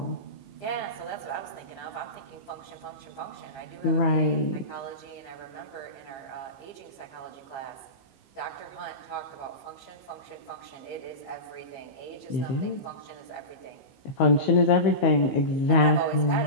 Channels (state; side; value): late; right; 15 ms